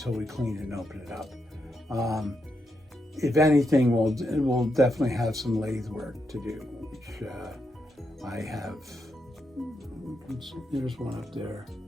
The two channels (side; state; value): both; normal; correlation 0.83